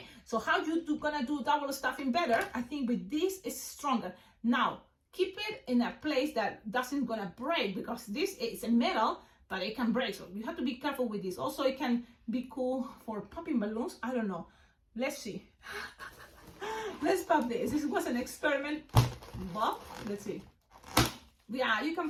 so how you gonna do double stuffing better? I think with this is stronger. Now keep it in a place that doesn't gonna break, because this is a metal, but it can break, so you have to be careful with this. Also, it can be cool for popping balloons. I don't know, let's see. Let's pop this. This was an experiment. Well, let's see. Yeah, you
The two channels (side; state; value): both; identical; correlation 1.00